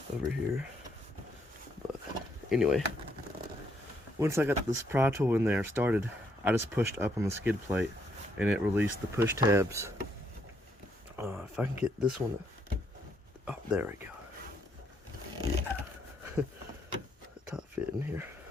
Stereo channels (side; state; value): both; normal; correlation 0.73